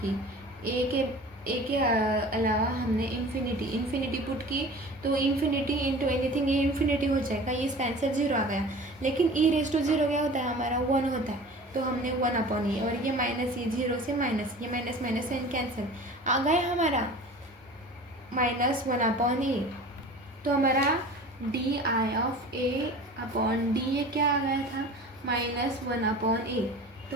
की, ए के अलावा हमने इन्फिनिटी पुट की, तो इन्फिनिटी इंटू एनीथिंग ये इन्फिनिटी हो जाएगा, ये इसका आंसर 0 आ गया, लेकिन ई रेस टू 0 क्या होता है हमारा 1 होता है, तो हमने 1 अपॉन ए, और ये माइनस ये 0 से माइनस, ये माइनस साइन कैंसिल आ गया हमारा -1 अपॉन ए, तो हमारा D I of A upon D ए क्या आ गया था -1 अपॉन ए।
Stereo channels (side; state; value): both; normal; correlation 0.40